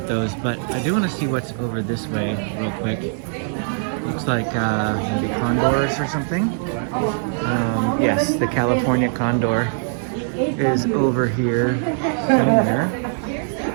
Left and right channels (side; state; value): left; silent; 62 dB below the other